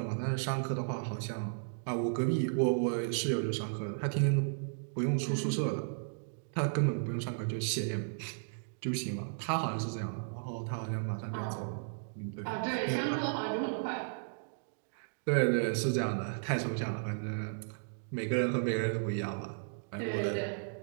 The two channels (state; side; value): silent; left; digital silence